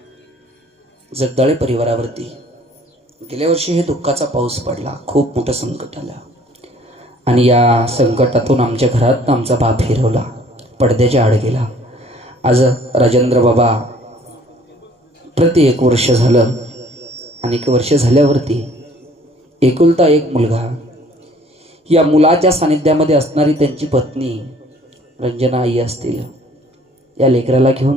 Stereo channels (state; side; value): normal; both; correlation 0.56